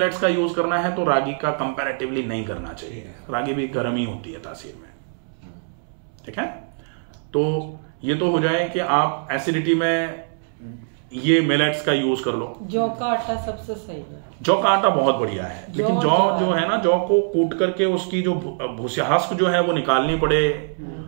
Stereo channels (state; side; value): silent; left; 64 dB below the other